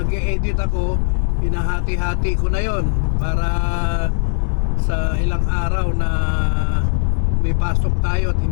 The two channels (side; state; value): right; silent; digital silence